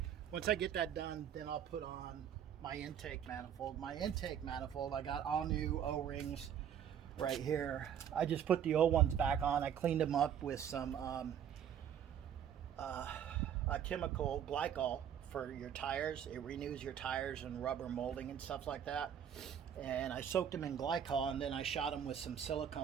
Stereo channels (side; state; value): left; quieter; 9.0 dB